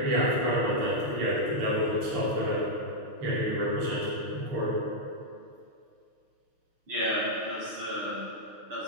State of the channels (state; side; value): late; left; 6.4 ms